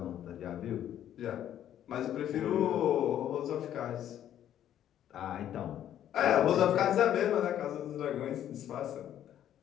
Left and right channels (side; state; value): right; quieter; 10.9 dB